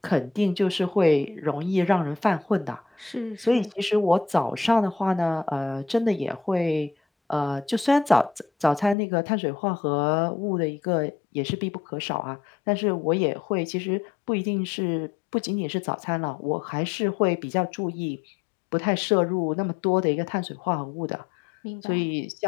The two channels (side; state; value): right; drops out; at 9.0 s